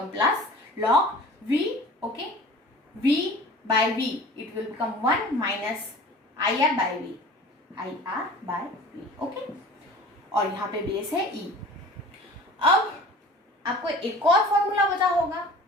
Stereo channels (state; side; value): normal; both; correlation 0.43